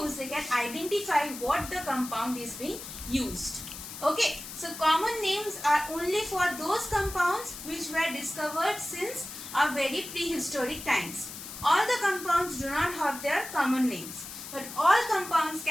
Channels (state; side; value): noise; left; hiss, 11 dB below the sound